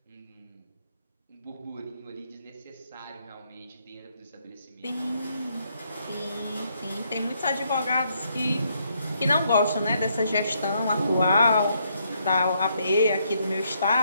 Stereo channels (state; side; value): inverted; both; correlation -0.74